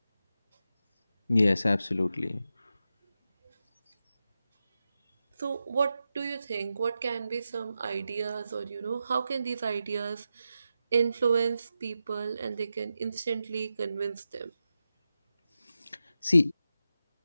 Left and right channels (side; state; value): both; inverted; correlation -0.90